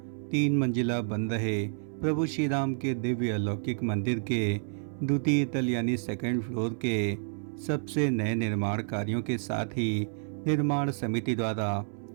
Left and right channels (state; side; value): silent; left; 58 dB below the other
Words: 3 मंजिला बन रहे प्रभु श्री राम के दिव्य अलौकिक मंदिर के द्वितीय तल यानी सेकंड फ्लोर के सबसे नए निर्माण कार्यों के साथ ही निर्माण समिति द्वारा